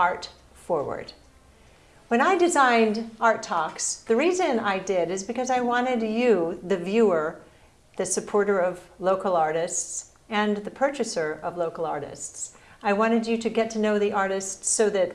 forward. When I designed Art Talks, the reason I did is because I wanted you, the viewer, the supporter of local artists, and the purchaser of local artists. I wanted you to get to know the artists so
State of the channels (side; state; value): both; identical; correlation 1.00